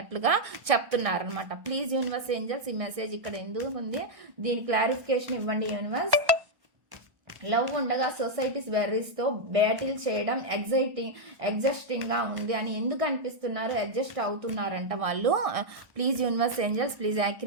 చెప్తున్నారు అనమాట. ప్లీజ్ యూనివర్స్ ఏంజల్స్, ఈ మెసేజ్ ఇక్కడ ఎందుకు ఉంది, దీని క్లారిఫికేషన్ ఇవ్వండి యూనివర్స్. లవ్ ఉండగా సొసైటీస్ వెర్రీస్తో బ్యాటిల్ చేయడం ఎగ్జాస్టింగ్గా ఉంది అని ఎందుకు అనిపిస్తున్నారు, అడ్జస్ట్ అవుతున్నారంట వాళ్ళు. ప్లీజ్ యూనివర్స్ ఏంజల్స్, ప్లీజ్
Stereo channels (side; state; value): left; late; 1.6 ms